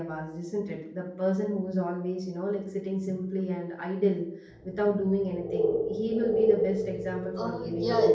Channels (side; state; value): both; identical; correlation 1.00